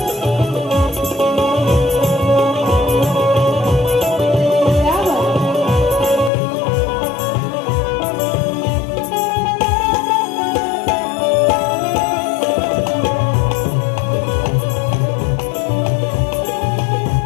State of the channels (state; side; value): drops out; right; at 6.3 s